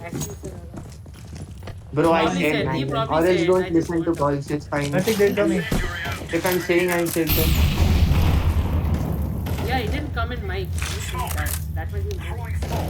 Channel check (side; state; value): both; identical; correlation 1.00